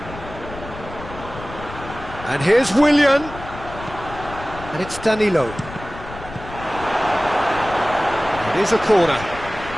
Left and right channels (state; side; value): noise; left; rumble, 13 dB below the sound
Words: And here's Willian. And it's Danilo. It is a corner.